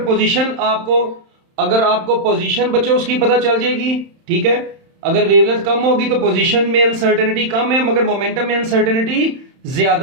अगर आपको पोजीशन बच्चों उसकी पता चल जाएगी, ठीक है। अगर वेवलेंथ कम होगी तो पोजीशन में अनसर्टेनिटी कम है, मगर मोमेंटम में अनसर्टेनिटी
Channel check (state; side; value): late; left; 31 ms